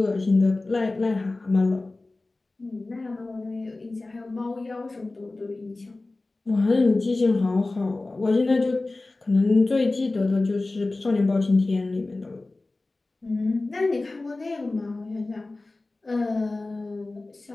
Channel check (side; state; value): right; quieter; 3.1 dB